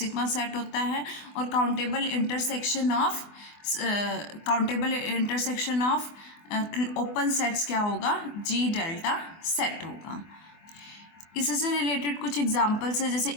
set होता है, और countable intersection of open sets क्या होगा, जी डेल्टा सेट होगा. इससे रिलेटेड कुछ एग्जांपल्स है, जैसे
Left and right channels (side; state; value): right; late; 24 ms